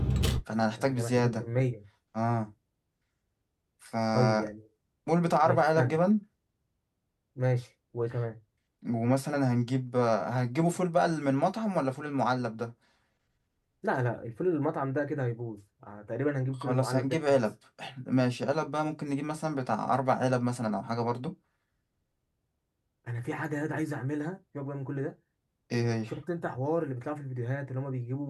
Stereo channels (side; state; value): both; identical; correlation 1.00